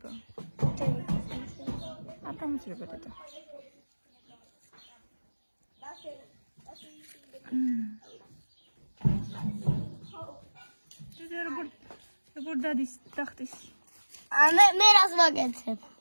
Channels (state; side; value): inverted; both; correlation -1.00